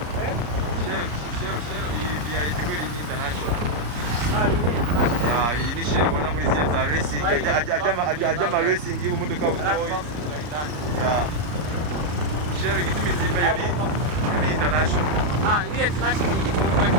Iyi ni share ubona muri za racing ajya racing y'umuduka w'umuduka. Share gitumi zime ni international. Ni international igitoro kwa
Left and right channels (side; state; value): left; late; 34 ms